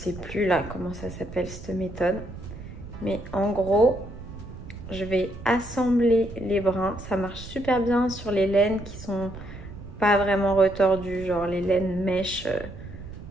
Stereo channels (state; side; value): noise; right; rumble, 13 dB below the sound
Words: plus là comment ça s'appelle cette méthode. Mais en gros, je vais assembler les brins. Ça marche super bien sur les laines qui sont... pas vraiment retordu, genre les laines mèches,